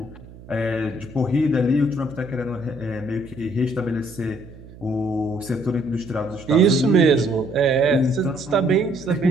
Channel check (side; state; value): right; noise; hum, 19 dB below the sound